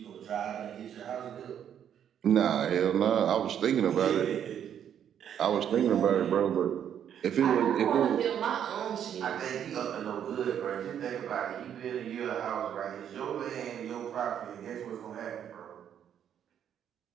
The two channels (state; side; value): quieter; left; 9.3 dB